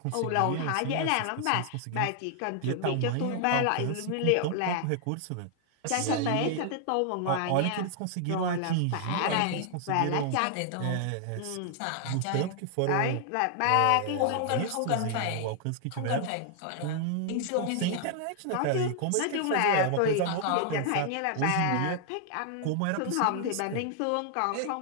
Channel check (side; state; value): both; different; correlation 0.00